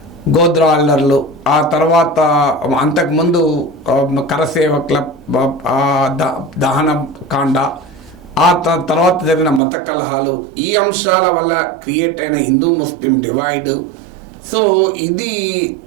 గోద్రా అల్లర్లు, ఆ తర్వాత అంతకుముందు కరసేవకుల దహన కాండ, ఆ తర్వాత జరిగిన మత కలహాలు, ఈ అంశాల వల్ల క్రియేట్ అయిన హిందూ ముస్లిం డివైడ్, సో ఇది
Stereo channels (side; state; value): left; drops out; at 9.6 s